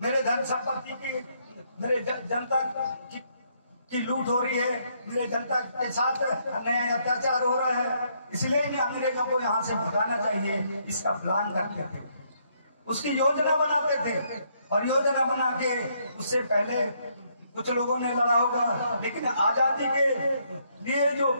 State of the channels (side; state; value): both; inverted; correlation -0.72